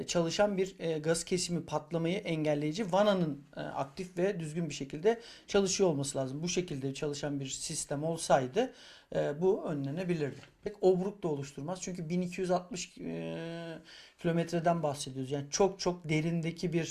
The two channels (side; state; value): both; identical; correlation 1.00